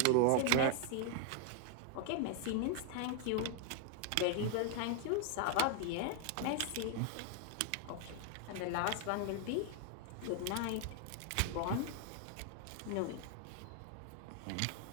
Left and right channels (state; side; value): different; both; correlation 0.00